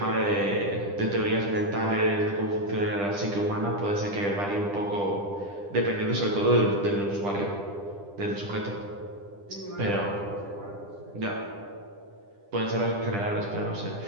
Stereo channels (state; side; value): late; left; 10 ms